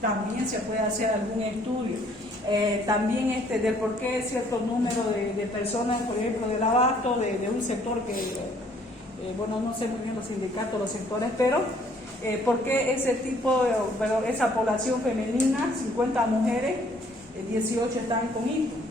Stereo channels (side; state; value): both; normal; correlation 0.62